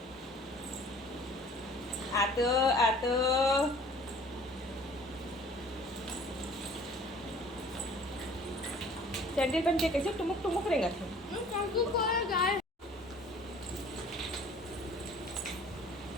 आतो आतो सैंडल पहन के कैसे टुमुक टुमुक रहेगा थे। गाय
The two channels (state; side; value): normal; both; correlation 0.51